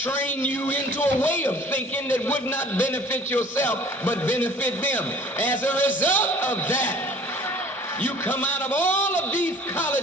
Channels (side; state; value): both; normal; correlation 0.50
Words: you into a way of thinking that would not benefit yourself, but benefit them. As a result of that, you come out of all of these